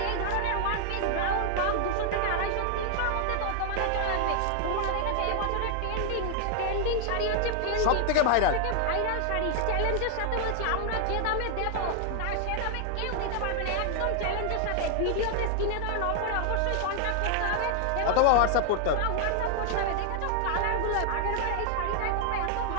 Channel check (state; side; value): different; both; correlation 0.00